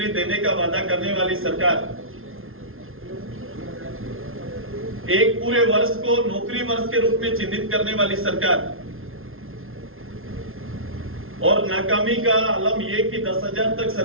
देने का वादा करने वाली सरकार एक पूरे वर्ष को नौकरी वर्ष के रूप में चिन्हित करने वाली सरकार और नाकामी का आलम यह कि 10,000 तक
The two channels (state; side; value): late; left; 0.61 ms